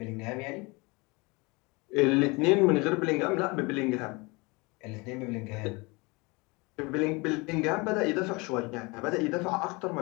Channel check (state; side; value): quieter; right; 26.5 dB